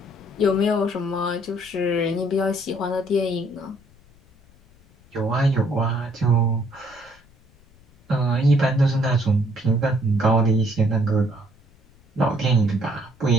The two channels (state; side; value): noise; left; rumble, 29 dB below the sound